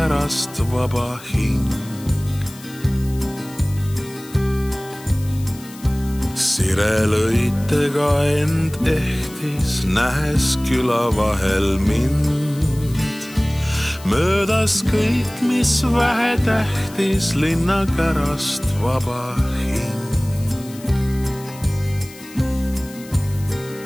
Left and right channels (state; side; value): noise; left; hiss, 19 dB below the sound